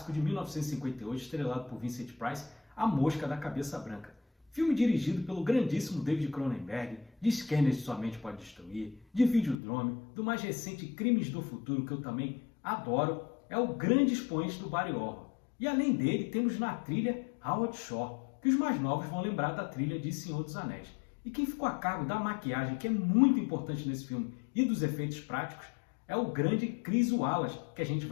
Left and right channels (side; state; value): right; drops out; at 9.6 s